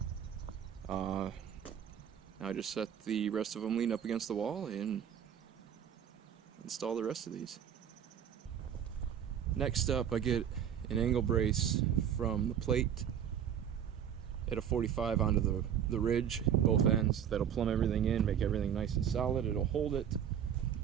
Now I just set the rest of them lean up against the wall and install the rest of these. Next up, I get an angle brace from the plate at a 45 onto the ridge, both ends. That'll plumb everything in, make everything nice and solid. It'll hold it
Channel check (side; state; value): left; quieter; 9.1 dB